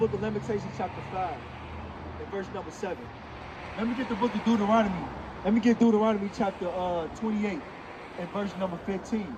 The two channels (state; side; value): identical; both; correlation 1.00